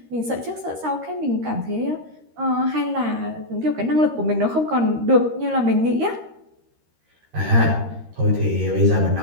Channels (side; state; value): left; late; 13 ms